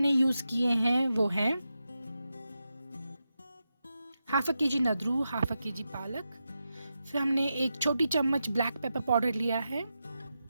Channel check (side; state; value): both; inverted; correlation -0.88